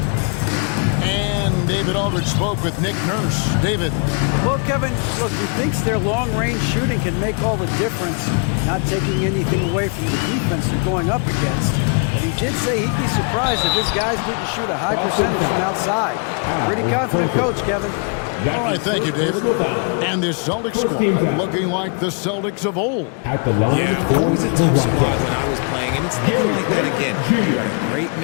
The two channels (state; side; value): quieter; right; 39.8 dB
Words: And David Aldridge spoke with Nick Nurse. David. Well, Kevin, look, he thinks their long-range shooting can make all the difference, not taking anything away from the defense they're going up against. But he did say he'd be surprised if his guys didn't shoot a high percentage from outside. Pretty confident coach, Kevin. All right, thank you, David. And this Celtics squad looking like the Celtics of old. Yeah, always a tough squad when I was playing, and it's looking like that again. You got a great